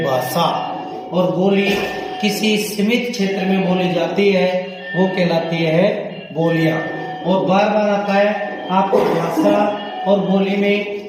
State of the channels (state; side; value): identical; both; correlation 1.00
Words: भाषा, और बोली किसी सीमित क्षेत्र में बोली जाती है वो कहलाती है बोलियां। और बार बार आता है आपको भाषा और बोली में